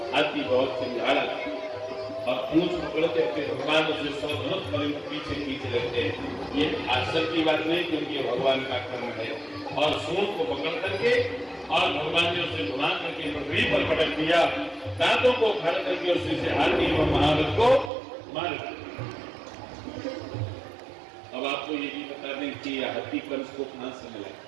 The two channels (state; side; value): drops out; left; at 17.9 s